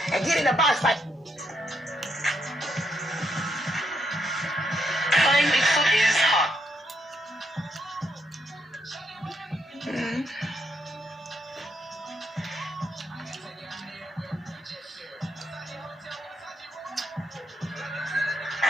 and get in the box like. Playing Bigfoot is hot.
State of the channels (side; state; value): both; normal; correlation 0.78